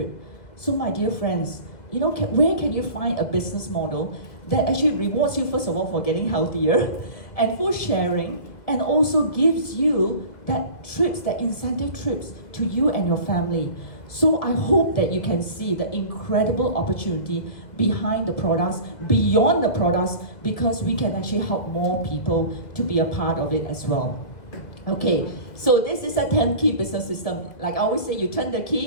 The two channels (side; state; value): right; late; 1.7 ms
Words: So my dear friends, you know, where can you find a business model that actually rewards you, first of all, for getting healthier and for sharing, and also gives you that trips, that incentive trips to you and your family. So I hope that you can see the incredible opportunity behind the products, beyond the products, because we can actually help more people to be a part of it as well. Okay, so this is a 10-key business system. Like I always say, you turn the